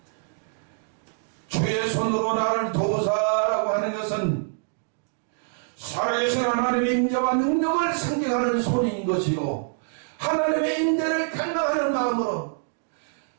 주의 손으로 나를 도우사라고 하는 것은 살아계신 하나님의 임재와 능력을 상징하는 손인 것이고, 하나님의 임재를 갈망하는 마음으로,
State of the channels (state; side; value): silent; left; digital silence